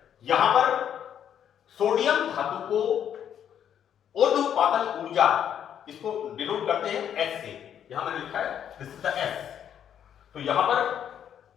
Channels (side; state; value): right; quieter; 9.3 dB